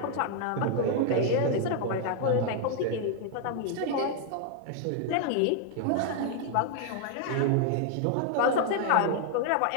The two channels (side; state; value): both; different; correlation 0.00